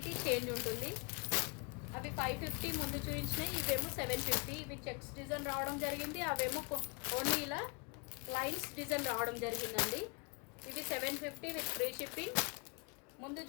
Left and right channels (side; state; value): right; quieter; 32.0 dB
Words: చేంజ్ ఉంటుంది. అవి 550 ముందు చూపించినాయి, ఇవేమో 750. ఇవి చెక్స్ డిజైన్ రావడం జరిగింది, అవేమో ఓన్లీ ఇలా లైన్స్ డిజైన్ రావడం జరిగిందండి. ఇవి 750 విత్ ఫ్రీ షిప్పింగ్. ముందు